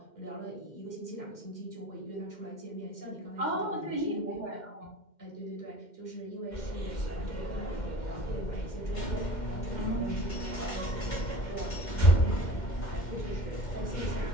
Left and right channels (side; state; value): right; late; 2.1 ms